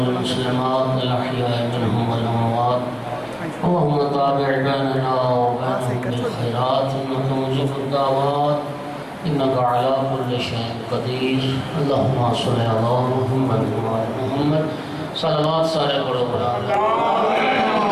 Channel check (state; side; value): identical; both; correlation 1.00